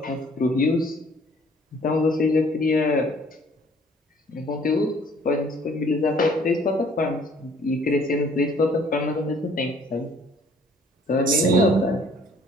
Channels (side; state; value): both; normal; correlation 0.58